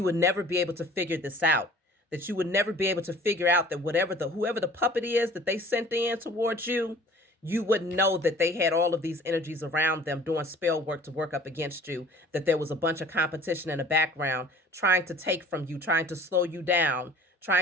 would never be able to figure this out, that you would never be able to figure out that whoever the puppet is that they sent in towards you, you wouldn't know that they had all of these energies around them doing spell work to work up against you, that there was a bunch of competition in the background trying to take from you, trying to slow you down,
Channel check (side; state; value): both; normal; correlation 0.48